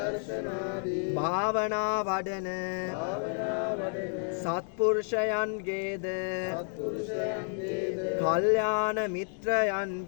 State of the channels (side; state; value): right; silent; 57 dB below the other